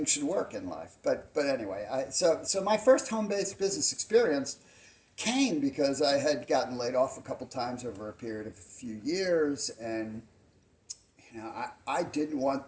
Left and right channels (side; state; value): both; identical; correlation 1.00